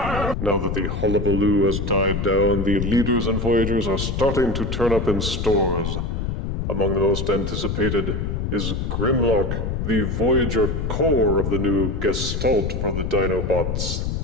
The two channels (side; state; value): left; noise; rumble, 2 dB below the sound